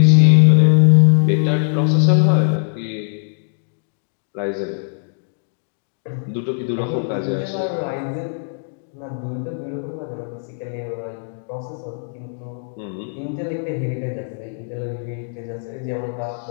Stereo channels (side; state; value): right; silent; digital silence